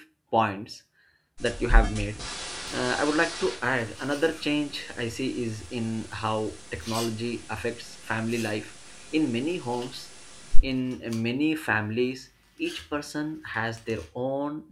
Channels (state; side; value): identical; both; correlation 1.00